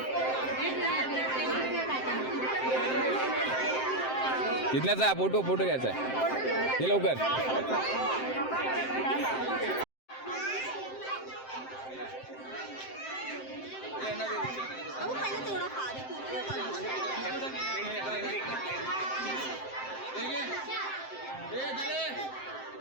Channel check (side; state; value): right; late; 7.7 ms